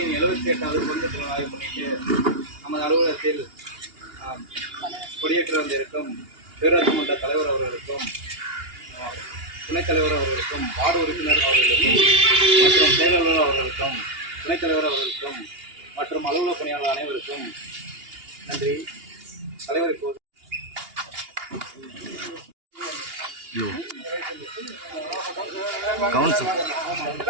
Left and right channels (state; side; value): late; left; 2.8 ms